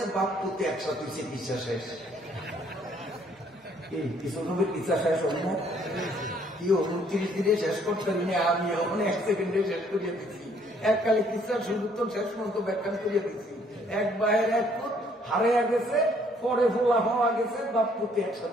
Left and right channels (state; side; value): normal; both; correlation 0.64